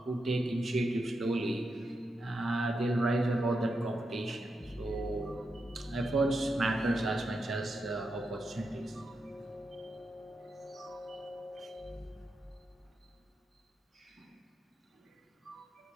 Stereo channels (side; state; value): both; normal; correlation 0.86